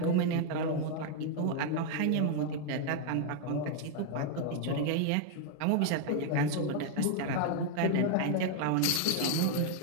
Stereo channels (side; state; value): both; different; correlation 0.00